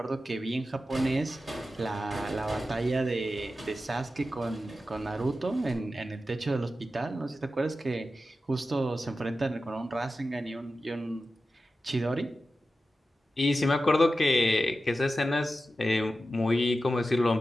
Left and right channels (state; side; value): normal; both; correlation 0.92